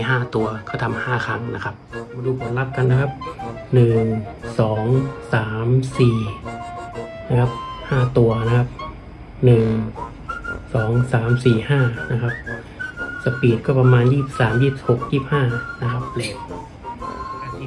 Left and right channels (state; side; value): identical; both; correlation 1.00